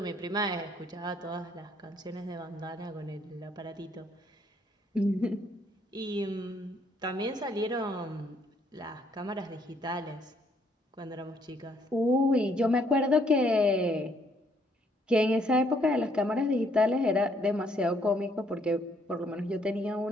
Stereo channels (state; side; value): normal; both; correlation 0.68